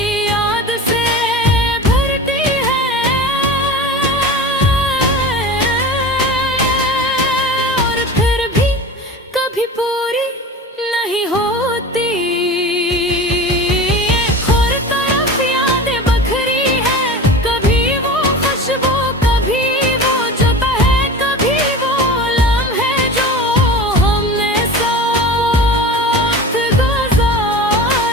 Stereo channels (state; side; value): normal; both; correlation 0.33